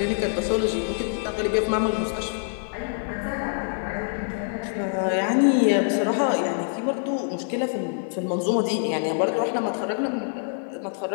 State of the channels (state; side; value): silent; right; 62 dB below the other